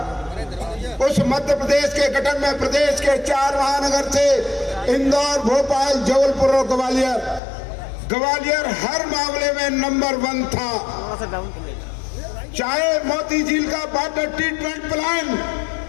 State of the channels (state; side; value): drops out; right; at 7.4 s